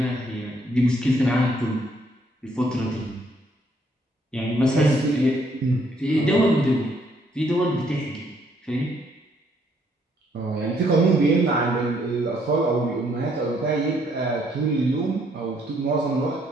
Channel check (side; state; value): both; normal; correlation 0.69